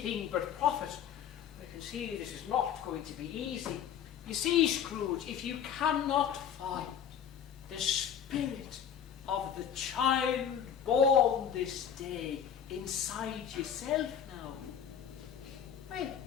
but profit. I can see this is not going to be easy. You see, Scrooge, if you cannot find the spirit of the child born this day inside yourself now, well,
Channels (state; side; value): quieter; right; 8.6 dB